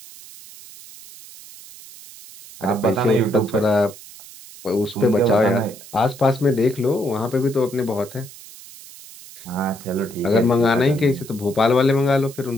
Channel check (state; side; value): noise; right; hiss, 18 dB below the sound